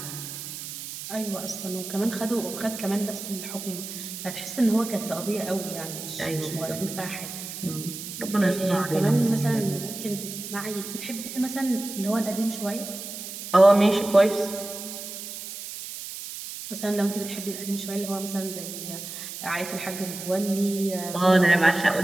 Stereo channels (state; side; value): noise; right; hiss, 9 dB below the sound